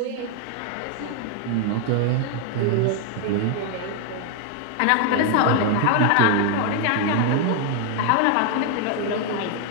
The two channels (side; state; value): both; different; correlation 0.00